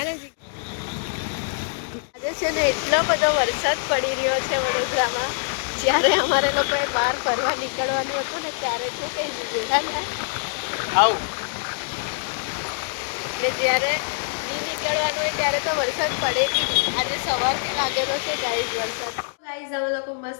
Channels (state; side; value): silent; right; digital silence